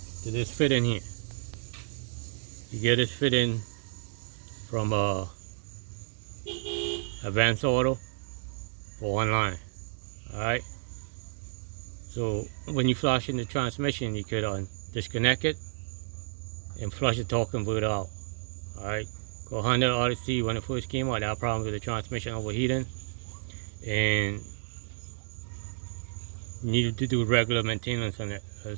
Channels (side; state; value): left; silent; 57 dB below the other